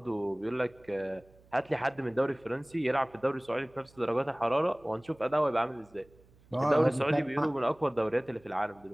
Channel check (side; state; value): right; noise; hum, 28 dB below the sound